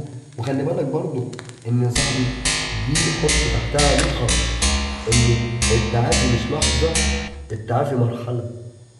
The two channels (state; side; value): identical; both; correlation 1.00